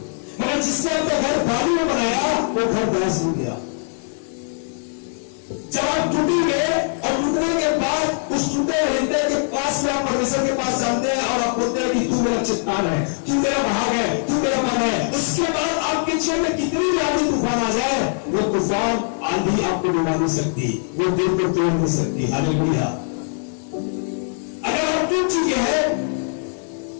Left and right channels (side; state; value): right; silent; digital silence